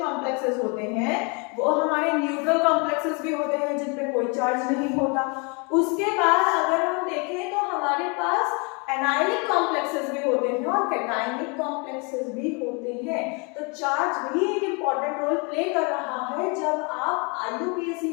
कॉम्प्लेक्सेस होते हैं वो हमारे न्यूट्रल कॉम्प्लेक्सेस भी होते हैं जिन पे कोई चार्ज नहीं होता। उसके बाद अगर हम देखें तो हमारे पास एनायनिक कॉम्प्लेक्सेस भी होते हैं और कैटायनिक कॉम्प्लेक्सेस भी होते हैं, तो चार्ज भी एक इंपॉर्टेंट रोल प्ले कर रहा है जब आप IUPAC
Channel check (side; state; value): right; quieter; 32.7 dB